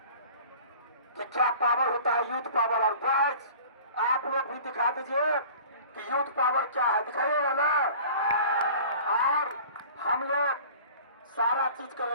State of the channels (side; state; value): both; inverted; correlation -0.44